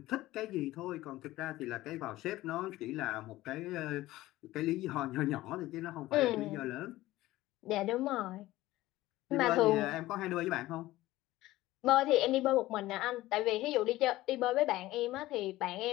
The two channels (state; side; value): quieter; right; 16.9 dB